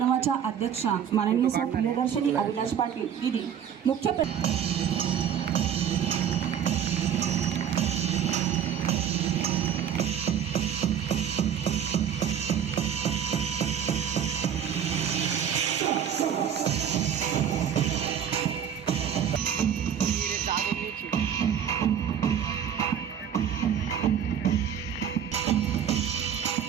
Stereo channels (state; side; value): quieter; left; 8.6 dB